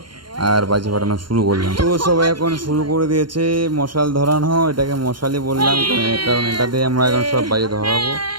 আর বাজি ফাটানো শুরু করলাম। তো সবাই এখন শুরু করে দিয়েছে মশাল ধরানো, এটাকে মশালই বললাম কারণ এটা দিয়ে আমরা এখন সব বাজি ধরাবো।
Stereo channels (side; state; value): left; late; 0.72 ms